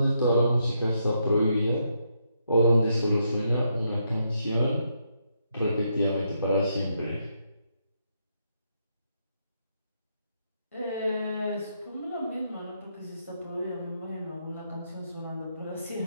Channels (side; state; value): both; inverted; correlation -0.78